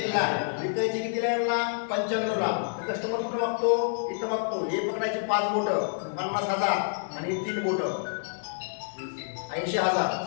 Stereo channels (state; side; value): silent; right; 57 dB below the other